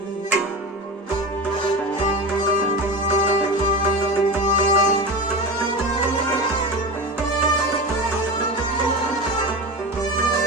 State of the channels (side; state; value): both; normal; correlation 0.25